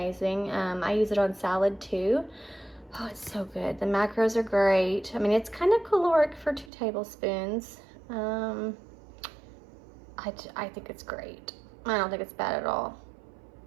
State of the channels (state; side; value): drops out; left; at 6.7 s